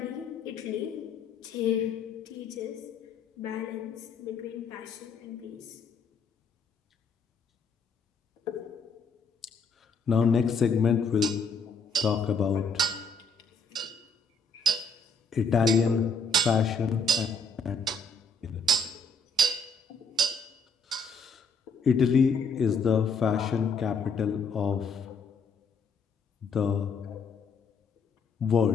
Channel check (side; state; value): right; quieter; 3.7 dB